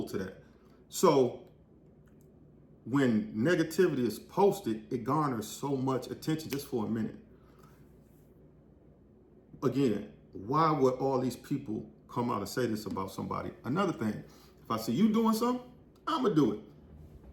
to that. So when negativity is posted, it garners so much attention just for a minute. Again, why would all these people come out and say this about somebody? Another thing, if I see you doing something, I'm gonna do it.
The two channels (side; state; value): both; identical; correlation 1.00